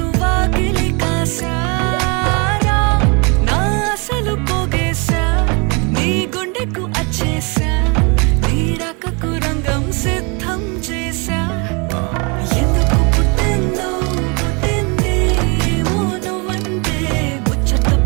వాకిలి కాసా అసలు పోగేశా నీ గుండెకు అచ్చేసా నీ రకకు రంగం సిద్ధం చేశా ఎందుకు పుట్టిందో పుట్టింది ఏమో నువ్వంటే ముచ్చట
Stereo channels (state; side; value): quieter; left; 31.6 dB